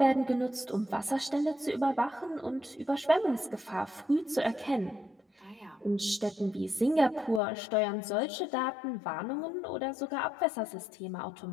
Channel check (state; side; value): drops out; right; at 7.4 s